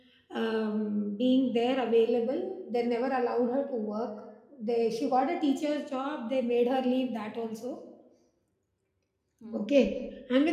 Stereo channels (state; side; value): identical; both; correlation 1.00